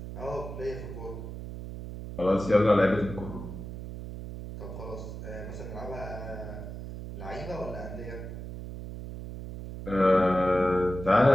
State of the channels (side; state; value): right; noise; hum, 9 dB below the sound